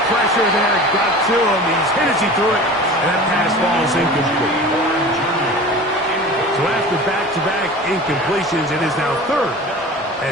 pressure there got to him. He's hit as he threw it, and that pass falls incomplete. So after back-to-back incompletions, it is now 3rd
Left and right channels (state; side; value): normal; both; correlation 0.38